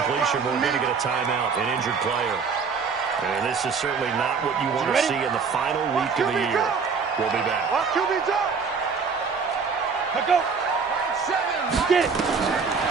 we're going to get a timeout, an injured player. And this is certainly not what you want to see in the final week of the year. We'll be back. Go. Get it.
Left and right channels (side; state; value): left; quieter; 5.4 dB